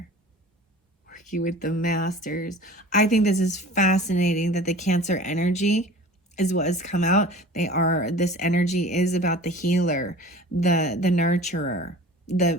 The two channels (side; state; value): both; normal; correlation 0.42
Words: Working with the Masters. I think this is fascinating that the Cancer energy is what has come out. This energy is about the healer, the nurturer,